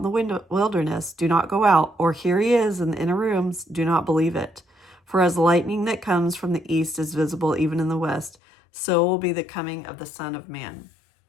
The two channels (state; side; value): drops out; right; at 8.3 s